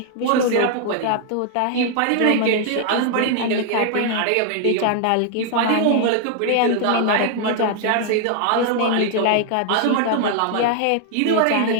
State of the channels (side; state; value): both; different; correlation 0.00